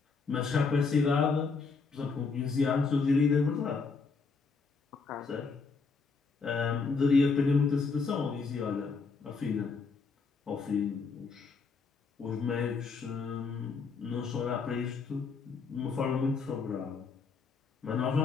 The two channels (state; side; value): quieter; right; 4.8 dB